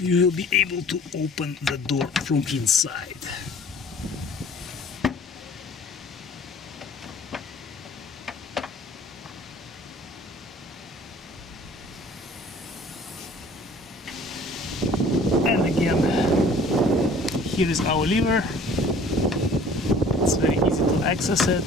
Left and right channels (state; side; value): normal; both; correlation 0.51